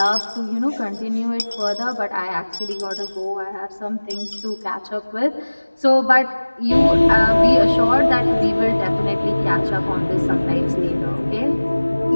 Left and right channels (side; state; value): both; inverted; correlation -1.00